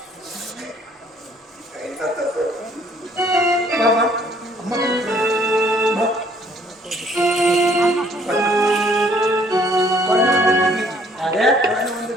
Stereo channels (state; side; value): normal; both; correlation 0.61